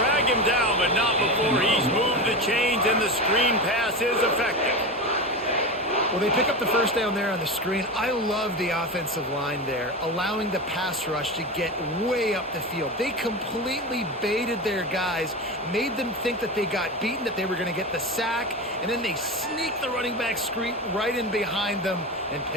him down, but not before he's moved the chains, and the screen pass is effective. Well, they pick up the 1st down there on the screen. I love the offensive line there, allowing the pass rush to get way up the field. They completely baited their guys, made them think that they got beaten, that they were going to get the sack, and then they sneak the running back screen right in behind them and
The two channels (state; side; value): normal; both; correlation 0.23